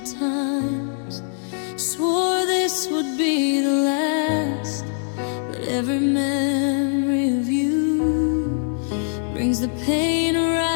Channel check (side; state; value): right; silent; digital silence